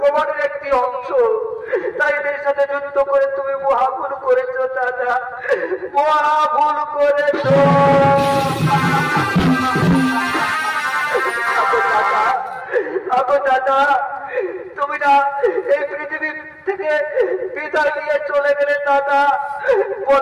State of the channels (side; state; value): both; identical; correlation 1.00